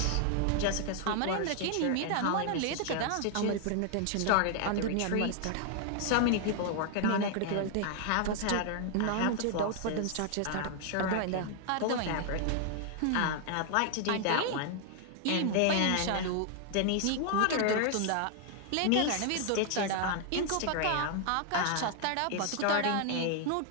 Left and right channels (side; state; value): both; different; correlation 0.00